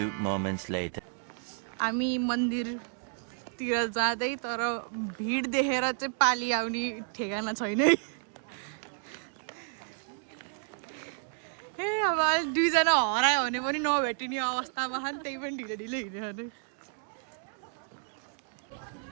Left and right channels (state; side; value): silent; left; 57 dB below the other